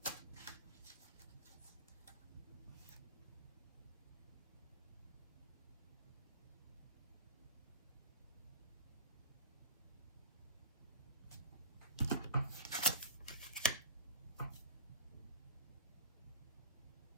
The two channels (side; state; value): both; inverted; correlation -0.36